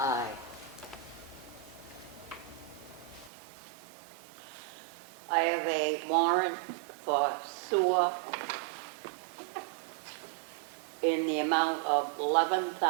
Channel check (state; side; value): drops out; left; at 3.3 s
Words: I have a warrant for sewer in the amount of